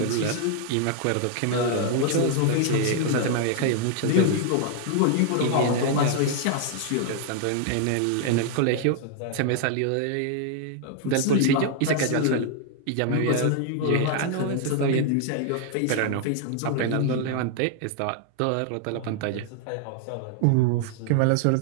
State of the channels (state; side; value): different; both; correlation 0.00